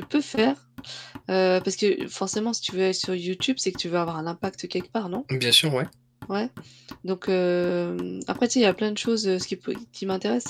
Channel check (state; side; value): identical; both; correlation 1.00